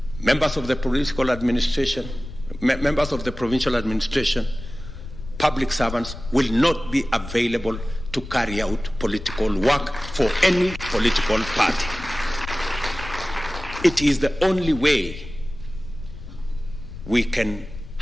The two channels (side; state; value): left; noise; rumble, 12 dB below the sound